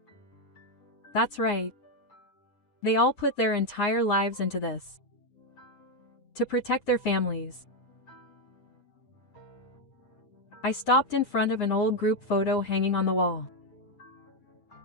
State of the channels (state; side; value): late; right; 7.7 ms